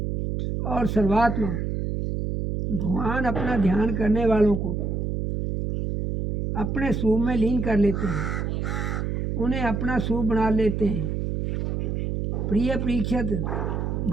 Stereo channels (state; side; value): noise; right; hum, 1 dB below the sound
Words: और सर्वात्मा भगवान अपना ध्यान करने वालों को अपने स्वरूप में लीन कर लेते हैं, उन्हें अपना स्वरूप बना लेते हैं। प्रिय परीक्षित,